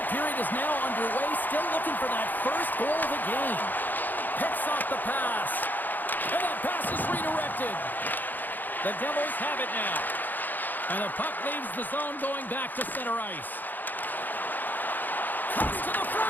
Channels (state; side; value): late; right; 0.087 ms